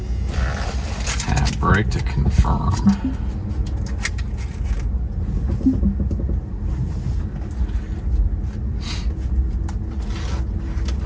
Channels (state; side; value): identical; both; correlation 1.00